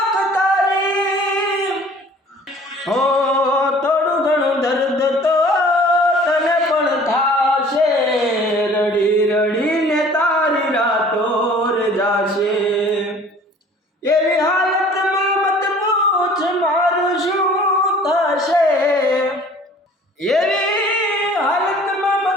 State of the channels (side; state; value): both; normal; correlation 0.50